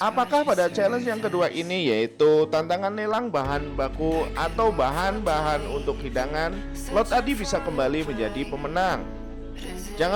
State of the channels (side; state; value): both; identical; correlation 1.00